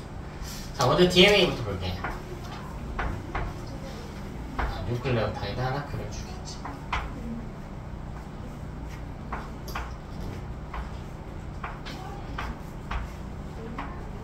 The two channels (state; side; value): identical; both; correlation 1.00